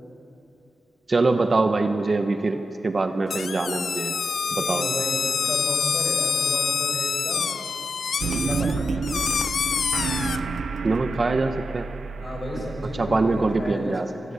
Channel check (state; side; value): normal; both; correlation 0.87